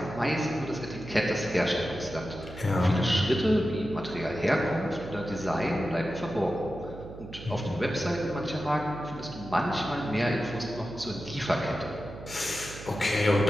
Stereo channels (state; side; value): noise; right; hum, 14 dB below the sound